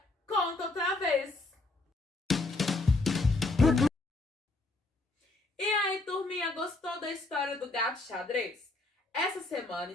conta outra vez. E aí, turminha, gostou da história do gato xadrez? Essa semana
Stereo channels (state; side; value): quieter; right; 3.1 dB